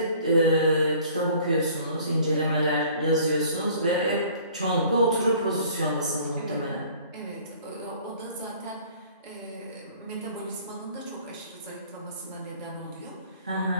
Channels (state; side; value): inverted; both; correlation -0.52